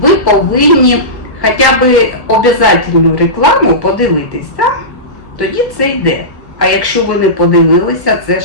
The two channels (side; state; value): right; late; 1.1 ms